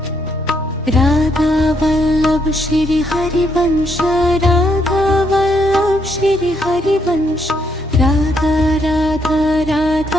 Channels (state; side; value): normal; both; correlation 0.74